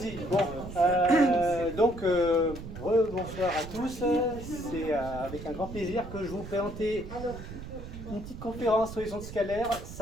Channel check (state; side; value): noise; right; rumble, 11 dB below the sound